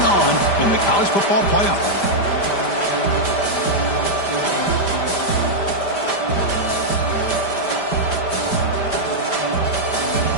on in the college football playoff.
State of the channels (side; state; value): right; late; 5.0 ms